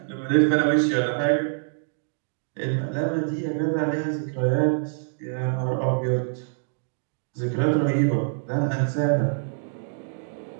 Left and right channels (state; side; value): silent; left; digital silence